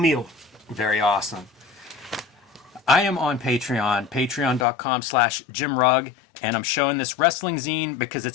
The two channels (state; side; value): drops out; right; at 4.7 s